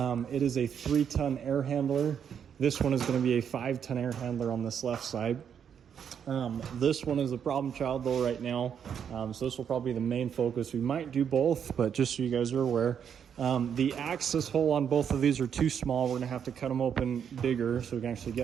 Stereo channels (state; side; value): quieter; left; 8.0 dB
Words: is a 3-ton air handler. This one is going to be a 5-ton air handler on this left side. This one is a problem child though right now, so this will probably be the main focus. We might do both, but just so you guys are aware, the access hole on both of these are too small. We're gonna have to cut them open bigger so we can actually